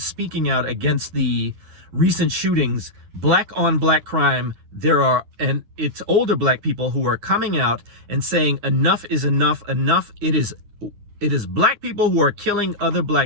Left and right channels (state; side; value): late; left; 9.8 ms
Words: speaking out against the recent shootings, black on black crime. And it's older black people who are coming out and saying enough is enough. It is black people who are killing other